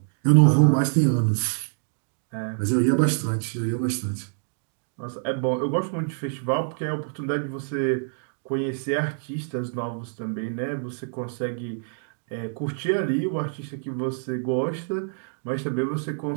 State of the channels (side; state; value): left; silent; digital silence